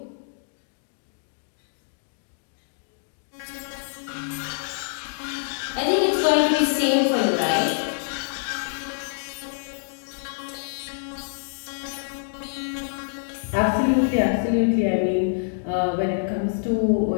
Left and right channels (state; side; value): silent; right; digital silence